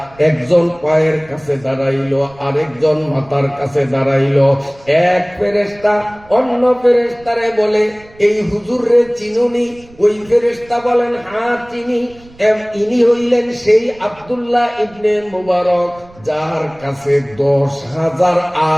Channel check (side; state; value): right; noise; rumble, 25 dB below the sound